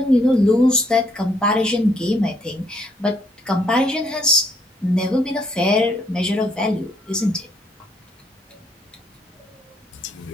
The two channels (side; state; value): both; normal; correlation 0.69